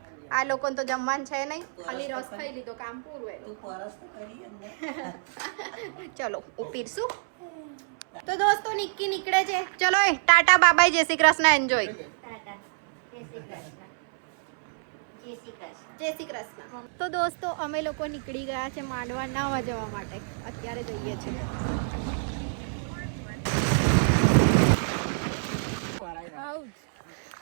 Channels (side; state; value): left; silent; 59 dB below the other